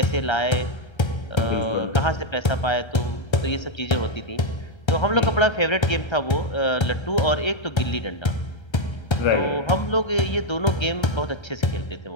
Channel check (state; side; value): late; right; 1.3 ms